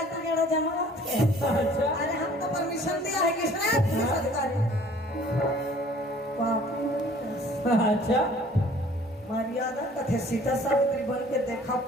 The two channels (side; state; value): both; normal; correlation 0.53